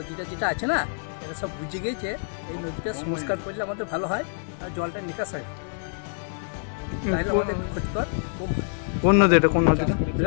যেটা আছে না, এটা সব বুঝে গেছে, এই নদীটা সংস্কার করলে আমাদের ভালো হয় আর জলটা নিকাশ হয়, তাহলে আমাদের ক্ষতিকর কম হয়। কোন নদী এটা? কোন নদীটা?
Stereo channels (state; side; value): silent; right; digital silence